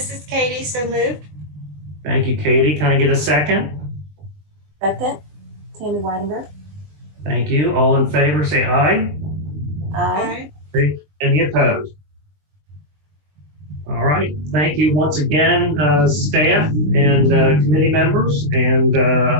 is Katie, so moved. Thank you, Katie. Can I get a second? Second, Tammy Weidenberg. Thank you. All in favor, say aye. Aye. Any opposed? All right. Thank you once again, staff and committee members, and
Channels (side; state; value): left; late; 20 ms